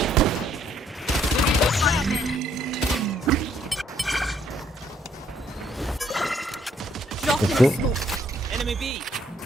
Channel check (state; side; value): normal; both; correlation 0.67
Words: Drop Let's in go. the smoke. Enemy B.